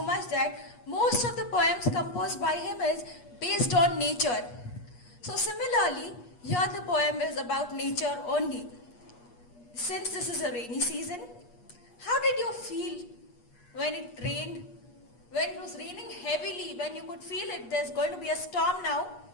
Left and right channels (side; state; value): right; late; 8.3 ms